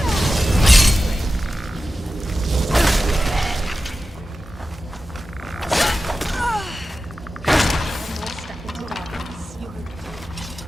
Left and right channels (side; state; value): both; normal; correlation 0.94